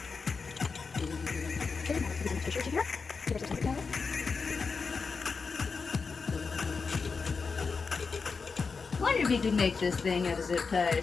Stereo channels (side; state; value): right; quieter; 4.9 dB